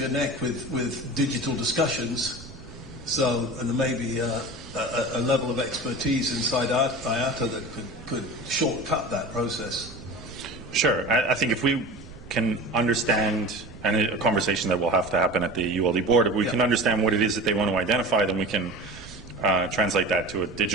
your neck with digital discussions, and there may be a level of expertise inside IATA that could shortcut that process. Sure. I think if we can understand, and a conversation that will have to happen at the ULD board, if we can understand what it is that they want to identify, then we can translate that to a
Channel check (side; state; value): right; noise; rumble, 17 dB below the sound